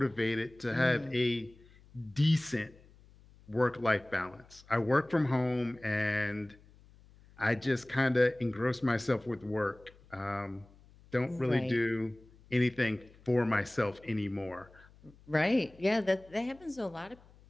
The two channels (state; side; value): noise; left; hum, 26 dB below the sound